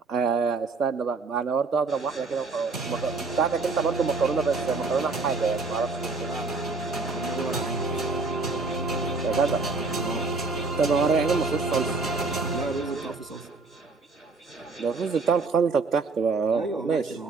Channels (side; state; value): left; quieter; 4.0 dB